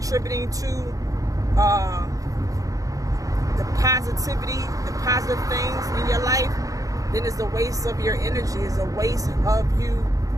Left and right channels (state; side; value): late; left; 0.17 ms